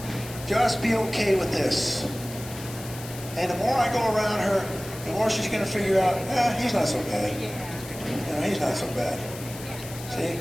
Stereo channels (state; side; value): noise; left; hiss, 14 dB below the sound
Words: Just be okay with this. And the more I go around her, the more she's going to figure out, he's not so bad. You know, he's not so bad. See,